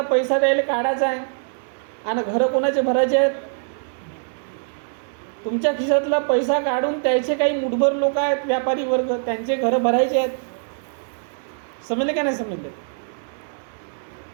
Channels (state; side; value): silent; left; digital silence